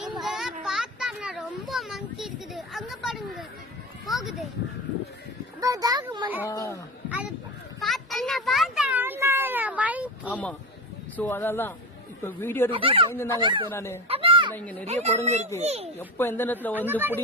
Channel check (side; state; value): both; normal; correlation 0.23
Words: இங்க பார்த்தா ரொம்ப மங்கி இருக்குது. அங்க பாருங்க. போகுது அப்பதான் அது ஆமா. ஸோ அதெல்லாம் இப்போ வீடியோ எடுத்து பயந்து தாங்க எடுத்தேன் நான். ஏன்னா இங்க நிறைய குரங்கு இருக்கு, எப்போ எந்த நேரத்துல வந்து